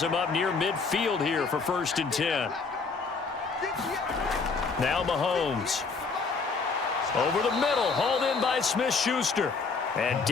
him up near midfield here for 1st and 10. Now Mahomes. Over the middle, hauled in by Smith-Schuster. And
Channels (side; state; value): right; quieter; 4.6 dB